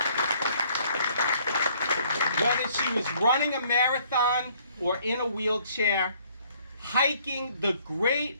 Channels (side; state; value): both; inverted; correlation -0.62